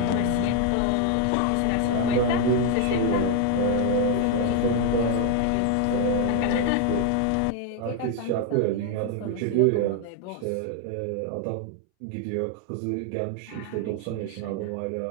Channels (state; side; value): different; both; correlation 0.00